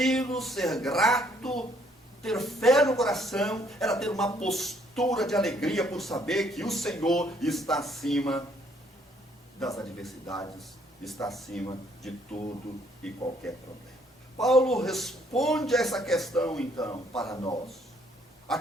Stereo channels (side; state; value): both; normal; correlation 0.66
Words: ser grato, ter fé no coração, era ter uma postura de alegria por saber que o Senhor está acima das adversidades, está acima de tudo e qualquer problema. Paulo responde a essa questão, então, para nós. A